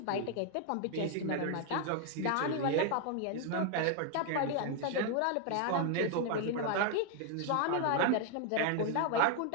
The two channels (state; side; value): different; both; correlation 0.00